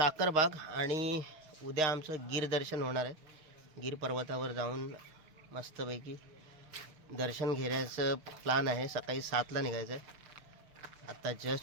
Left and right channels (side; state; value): left; late; 6.5 ms